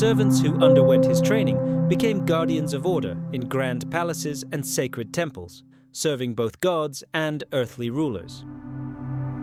who underwent his training became guardians of order in grand palaces and sacred temples, serving both gods and earthly rulers.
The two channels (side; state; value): both; identical; correlation 1.00